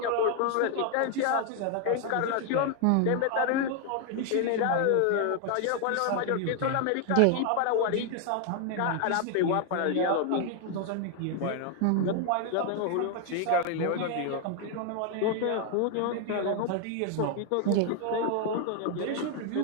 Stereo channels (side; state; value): both; different; correlation 0.00